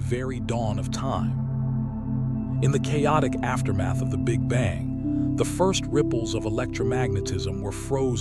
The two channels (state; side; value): identical; both; correlation 1.00